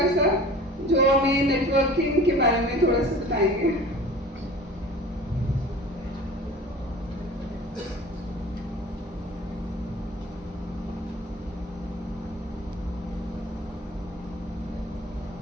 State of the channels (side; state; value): both; normal; correlation 0.43